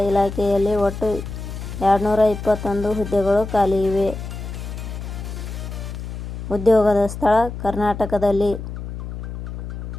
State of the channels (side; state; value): left; noise; hum, 8 dB below the sound